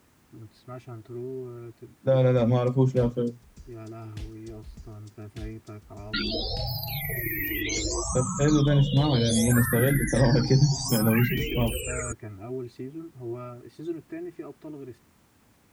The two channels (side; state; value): both; identical; correlation 1.00